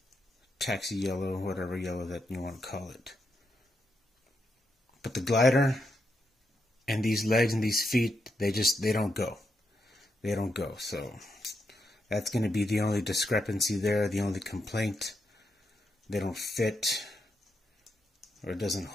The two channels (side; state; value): both; normal; correlation 0.82